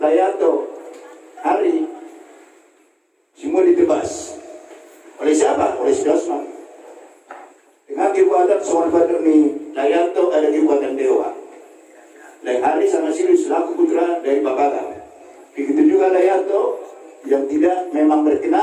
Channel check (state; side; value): identical; both; correlation 1.00